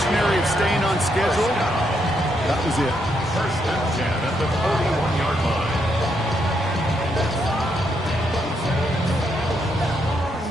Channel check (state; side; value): normal; both; correlation 0.77